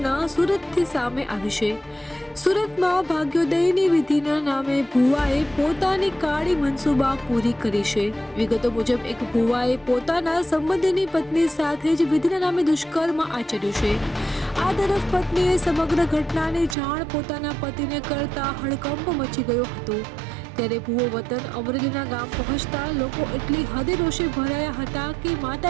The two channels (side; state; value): left; drops out; at 16.8 s